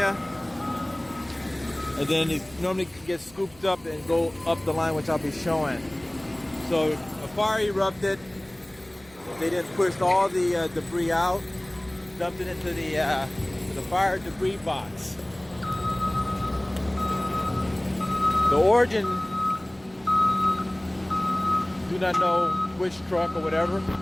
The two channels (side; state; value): right; noise; hum, 26 dB below the sound